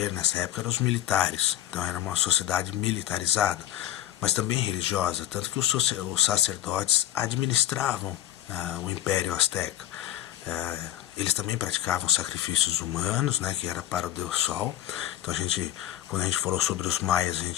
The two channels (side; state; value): right; quieter; 12.9 dB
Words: nessa época eram os militares, então era uma sociedade militarizada, mas também religiosa, tanto que os sacerdotes administravam o Império Azteca. Eles também praticavam sacrifícios humanos, né, que era para o Deus Sol. Então quando a gente falou sobre os maias, a